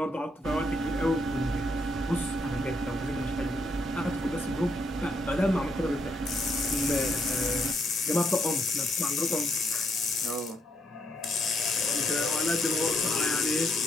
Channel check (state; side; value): normal; both; correlation 0.75